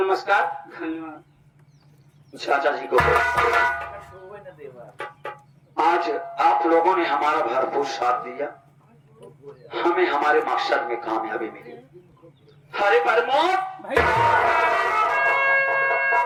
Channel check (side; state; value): both; identical; correlation 1.00